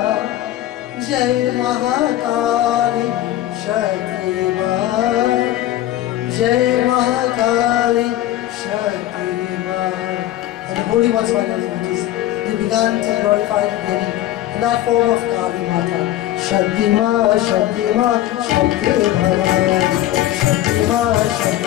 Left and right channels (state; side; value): quieter; right; 13.9 dB